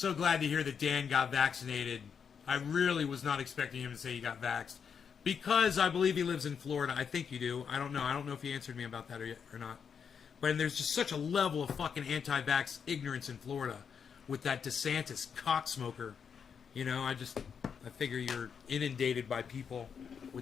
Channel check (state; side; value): quieter; right; 6.8 dB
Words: glad to hear that Dan got vaccinated. I really was not expecting him to say he got vaxxed. Because I believe he lives in Florida. I think you do. I don't know. I don't know if he answered me about that or not. But there's just such a level of fucking anti-vax ignorance in Florida with that DeSantis cocksmoker. You know, I figure you're inundated by people